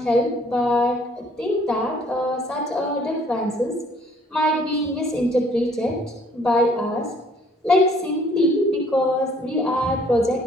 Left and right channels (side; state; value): both; normal; correlation 0.60